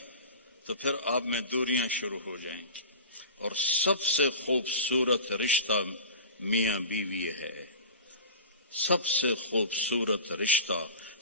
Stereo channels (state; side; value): inverted; both; correlation -0.36